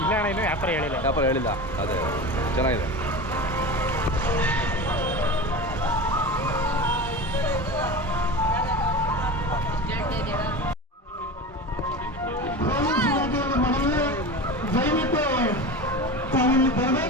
ಇಲ್ಲ ಅಣ್ಣ, ಇನ್ನೂ ವ್ಯಾಪಾರ ಹೇಳಿಲ್ಲ. ಅದೇ ಚೆನ್ನಾಗಿದೆ. ದಯವಿಟ್ಟು ತಾವಿಲ್ಲಿ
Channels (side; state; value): both; normal; correlation 0.28